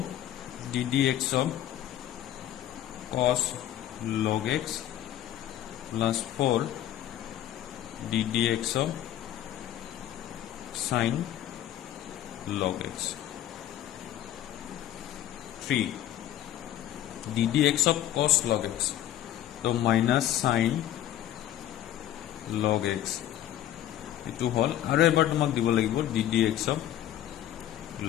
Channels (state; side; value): quieter; right; 12.2 dB